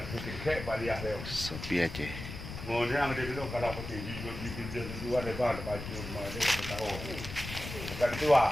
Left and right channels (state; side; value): noise; left; rumble, 8 dB below the sound